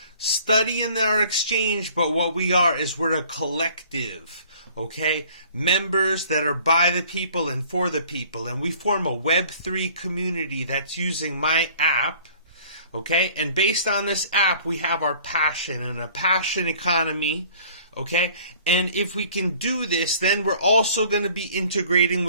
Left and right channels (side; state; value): both; inverted; correlation -0.53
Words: study in our exchange, but what we are is we're a collective, okay? Members that are by the people and for the people, and we form a Web3 community that's using my app, okay? And based on this app, we have our passion and a passion economy. Okay, and if we can do this, then we're also going to be integrating